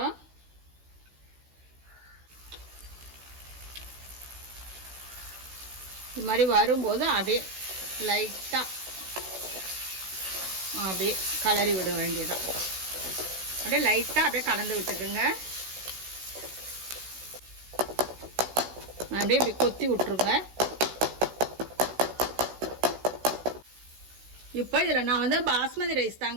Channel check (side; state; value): left; late; 16 ms